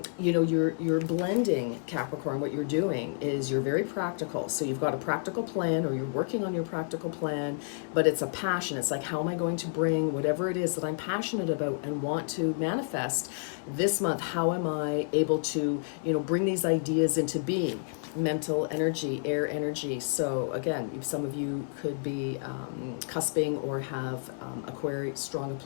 know, you're blending, Capricorn. What you're doing is you're very practical. So you've got a practical plan, or you're working on your practical plan, but it's a passion. It's like, how am I going to bring whatever it is that I'm passionate about and want to manifest this month? How am I able to, you know, bring these ideas into being? Mental energy, air energy. So again, some of you could be cusping or have strong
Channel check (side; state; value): right; silent; 58 dB below the other